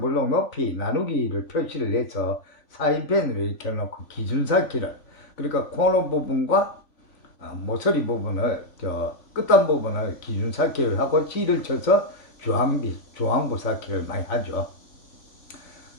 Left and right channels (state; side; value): late; right; 3.5 ms